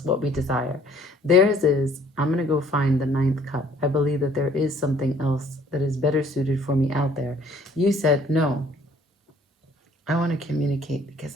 what we desire. Theirs is, I'm going to go find the Ninth Cup. I believe that there is something else that is better suited for me out there. You said, no, I want to communicate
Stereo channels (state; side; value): normal; both; correlation 0.58